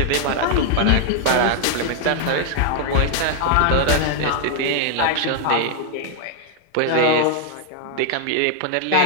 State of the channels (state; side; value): different; both; correlation 0.00